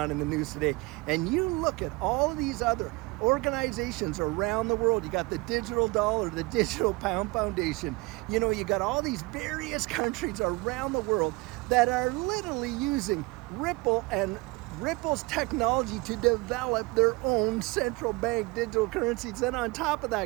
in the news today. And you look at all of these other organizations around the world. You got the digital dollar, the digital pound foundation. You got all these various countries around the world that are literally using Ripple and Ripple's technology to develop their own central bank digital currencies. And on top of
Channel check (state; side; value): quieter; left; 24.6 dB